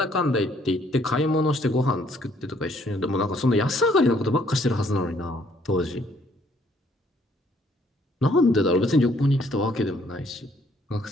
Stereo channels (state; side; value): normal; both; correlation 0.65